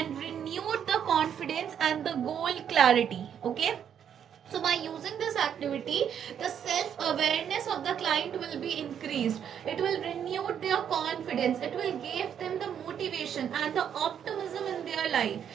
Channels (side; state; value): left; quieter; 8.7 dB